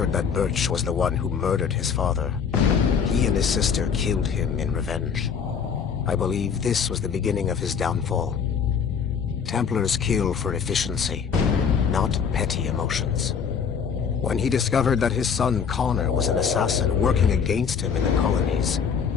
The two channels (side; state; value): right; quieter; 6.7 dB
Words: that Birch was the one who murdered his father, he and his sister killed him in revenge. I believe this was the beginning of his downfall. Templars kill for efficiency, not petty emotions. When he discovered that his son Connor was an assassin working against him in the colonies,